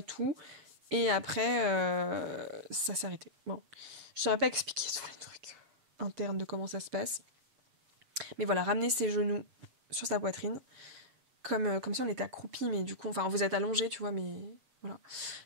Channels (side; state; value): left; late; 7.4 ms